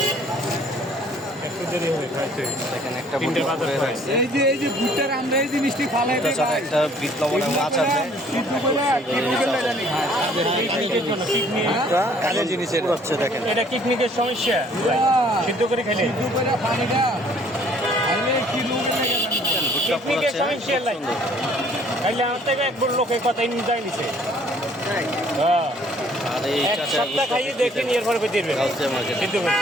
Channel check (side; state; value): both; normal; correlation 0.58